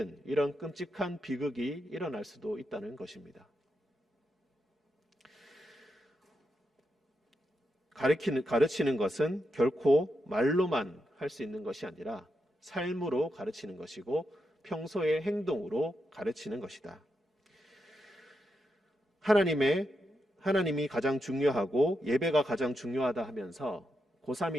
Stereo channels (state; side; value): normal; both; correlation 0.85